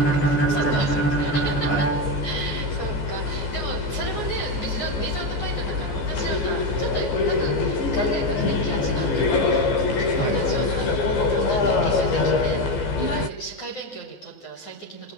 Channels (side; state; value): right; late; 15 ms